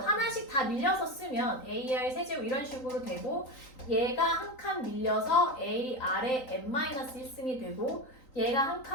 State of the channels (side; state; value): right; late; 3.9 ms